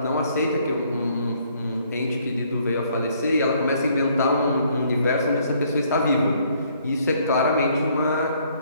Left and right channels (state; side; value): inverted; both; correlation -0.65